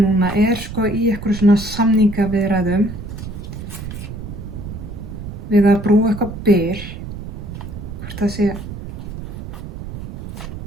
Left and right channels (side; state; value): right; noise; rumble, 9 dB below the sound